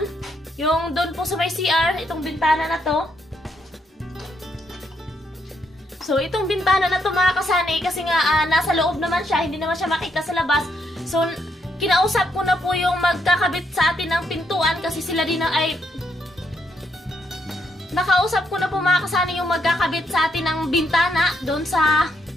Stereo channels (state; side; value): normal; both; correlation 0.76